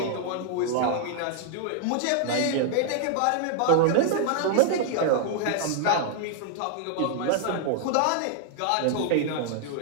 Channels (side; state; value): both; different; correlation 0.00